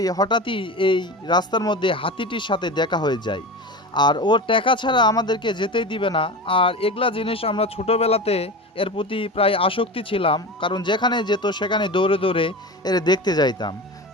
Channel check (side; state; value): both; normal; correlation 0.28